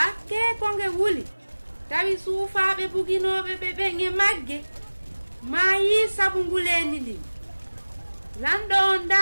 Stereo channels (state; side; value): inverted; both; correlation -1.00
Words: ko nge wuli tawi suufaaɓe buginoɓe ɓe ɓen e magge ma yi sabu ngulendi ndin lanɗo on